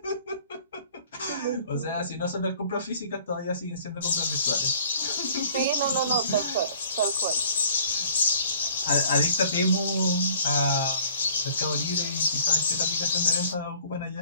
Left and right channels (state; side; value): inverted; both; correlation -0.54